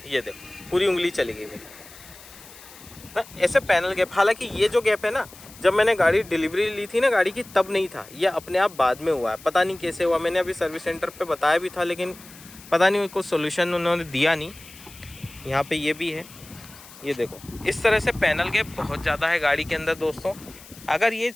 ये देखो, पूरी उंगली चली गई मेरी ना, ऐसे पैनल गैप। हालांकि ये जो गैप है ना, जब मैंने गाड़ी डिलीवरी ली थी ना गाड़ी की, तब नहीं था, ये अपने आप बाद में हुआ है। पता नहीं कैसे हुआ, मैंने अभी सर्विस सेंटर पे बताया भी था, लेकिन पता नहीं कोई सोल्यूशन उन्होंने दिया नहीं। यहाँ पे ये भी है, ये देखो, इस तरह से पैनल गैप बहुत ज़्यादा है गाड़ी के अंदर। दोस्तों, अगर ये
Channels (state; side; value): noise; left; hiss, 20 dB below the sound